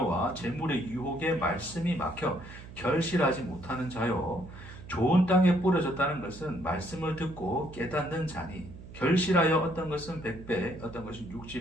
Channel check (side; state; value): right; noise; hum, 15 dB below the sound